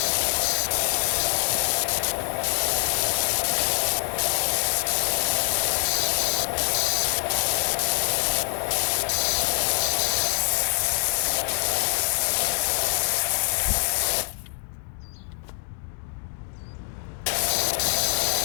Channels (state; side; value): silent; right; 62 dB below the other